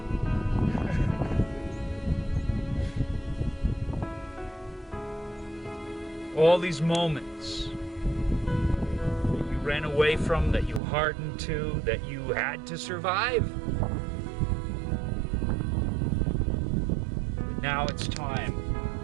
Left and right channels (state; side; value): drops out; left; at 10.8 s